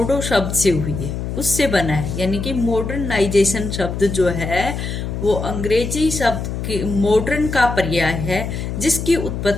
शब्द से हुई है, उससे बना है। यानी कि मॉडर्नाइजेशन शब्द जो है वो अंग्रेजी शब्द के मॉडर्न का पर्याय है, जिसकी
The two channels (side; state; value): left; noise; hum, 4 dB below the sound